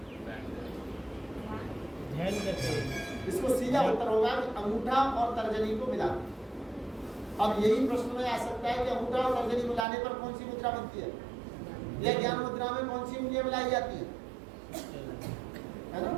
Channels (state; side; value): drops out; left; at 9.9 s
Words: ध्यान करते हैं। इसको सीधा उत्तर होगा कि अंगूठा और तर्जनी को मिला। अब यही प्रश्न में आ सकता है कि अंगूठा और तर्जनी मिलाने पर कौन सी मुद्रा बनती है, या ज्ञान मुद्रा में कौन सी उंगलियां मिलाई जाती है? है ना?